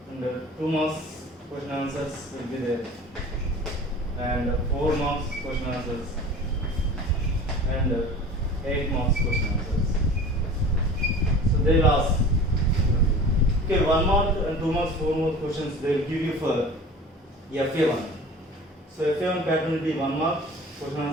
and 2 marks question answers will be there, and 4 marks question answers, and 8 marks question answers. So they will ask. Okay, 1 mark and 2 marks, 4 marks questions they will give you for FA1. So FA1 pattern will be 1 mark question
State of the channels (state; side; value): normal; both; correlation 0.40